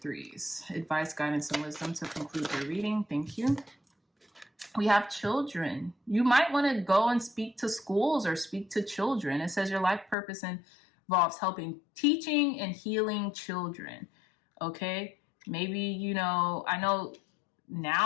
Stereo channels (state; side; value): drops out; right; at 10.2 s